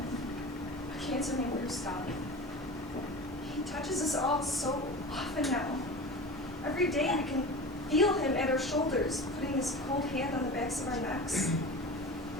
A cancer named Gustav. He touches us all so often now. Every day we can feel him at our shoulders, putting his cold hand on the backs of our necks,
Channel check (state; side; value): normal; both; correlation 0.32